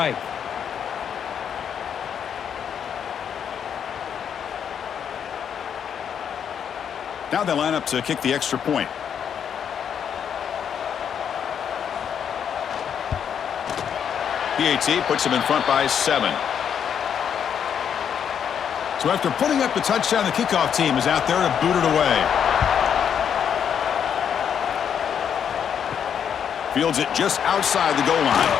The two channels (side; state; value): right; quieter; 8.1 dB